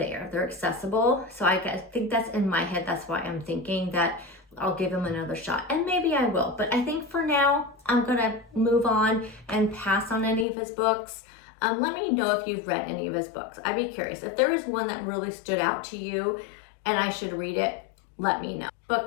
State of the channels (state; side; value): drops out; right; at 10.5 s